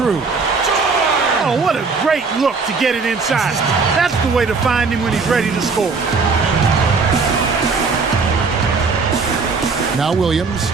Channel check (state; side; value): quieter; left; 4.6 dB